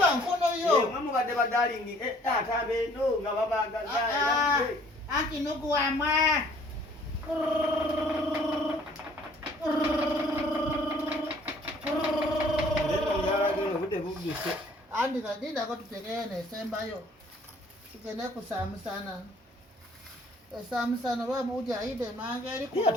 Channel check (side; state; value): both; normal; correlation 0.57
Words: nkono yo. Mwe mubadde badalingi. Taata beno nga babagaza. Anti nugu wamwe. Andi kadinda ko tutegene sembayo. Tugende kusamusana. Esamusana babuja ide mange eri